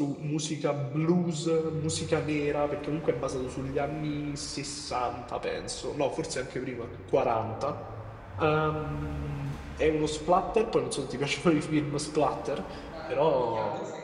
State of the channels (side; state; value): both; identical; correlation 1.00